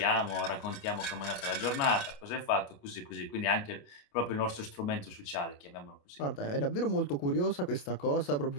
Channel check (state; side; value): late; right; 28 ms